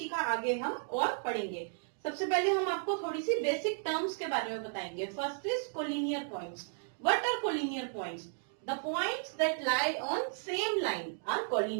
का आगे हम और पढ़ेंगे। सबसे पहले हम आपको थोड़ी सी बेसिक टर्म्स के बारे में बताएंगे। First is collinear points. What are collinear points? The points that lie on same line are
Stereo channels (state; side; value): silent; left; digital silence